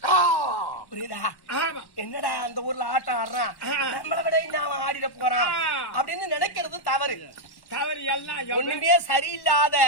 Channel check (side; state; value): right; late; 1.1 ms